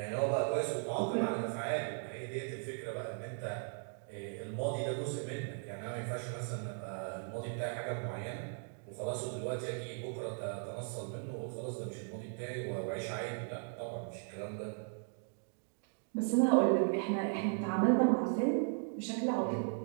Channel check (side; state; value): left; silent; 53 dB below the other